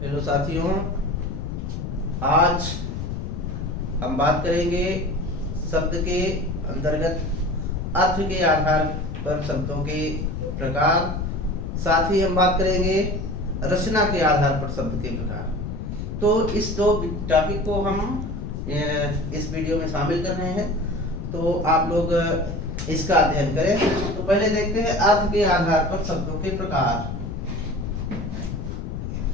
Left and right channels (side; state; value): left; noise; rumble, 5 dB below the sound